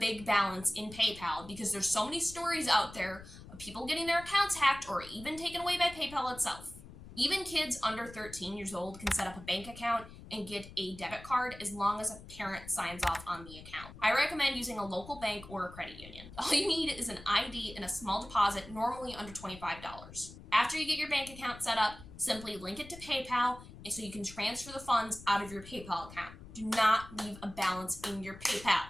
balance in PayPal because there's so many stories out there of people getting their accounts hacked or even taken away by PayPal itself. Even kids under 13 years old can set up a bank account and get a debit card as long as a parent signs off on the account. I recommend using a local bank or a credit union. All you need is an ID and a small deposit, normally under $25. After you get your bank account set up, simply link it to PayPal so you can transfer the funds out of your PayPal account. Do not leave a balance in your PayPal.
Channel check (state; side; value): noise; left; rumble, 16 dB below the sound